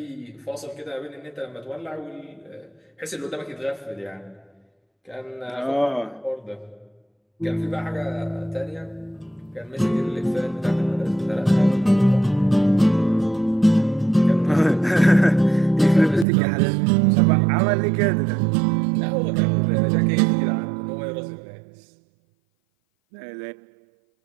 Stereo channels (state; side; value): drops out; left; at 16.2 s